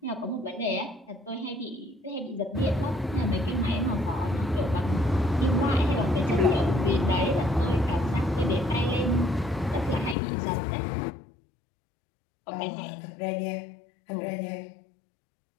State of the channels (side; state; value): right; drops out; at 10.2 s